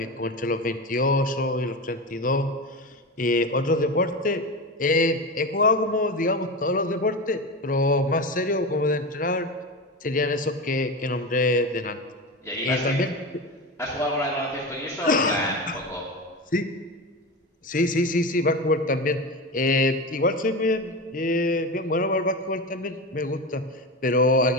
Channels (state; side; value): normal; both; correlation 0.23